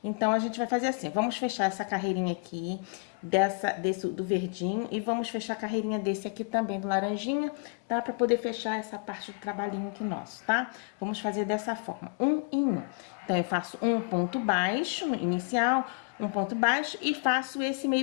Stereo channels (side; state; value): right; quieter; 37.1 dB